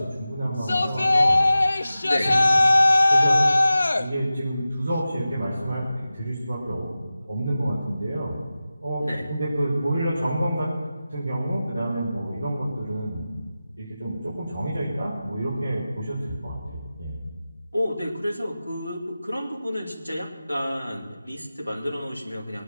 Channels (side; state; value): both; inverted; correlation -0.95